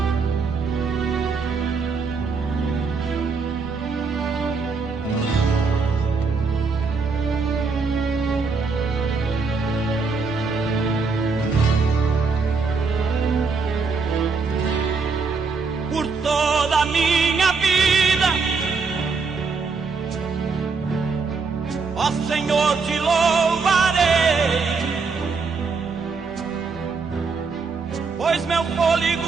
Por toda a minha vida, ó Senhor, te louvarei, pois meu fôlego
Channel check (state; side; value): quieter; left; 4.7 dB